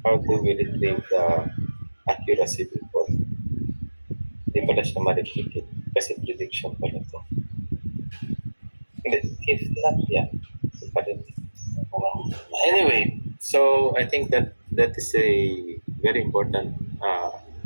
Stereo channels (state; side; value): inverted; both; correlation -1.00